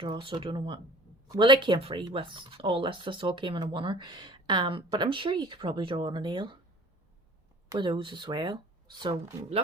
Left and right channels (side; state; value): both; normal; correlation 0.46